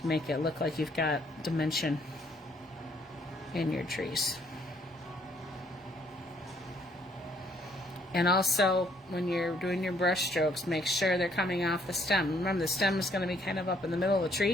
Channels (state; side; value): normal; both; correlation 0.66